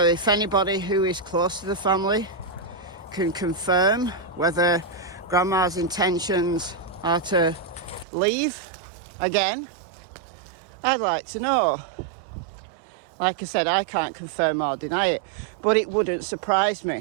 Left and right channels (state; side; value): drops out; left; at 8.1 s